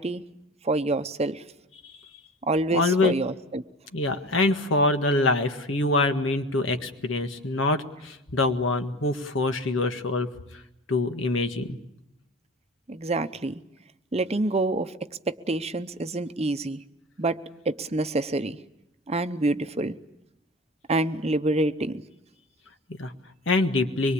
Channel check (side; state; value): both; normal; correlation 0.36